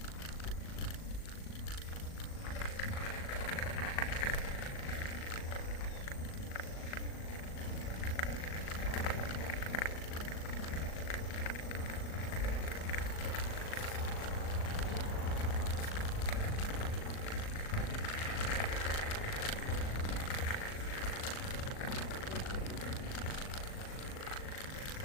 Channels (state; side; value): late; right; 38 ms